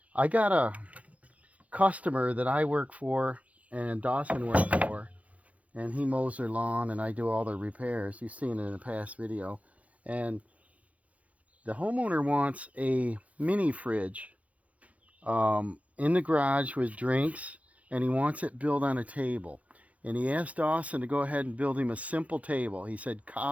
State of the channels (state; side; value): late; left; 0.067 ms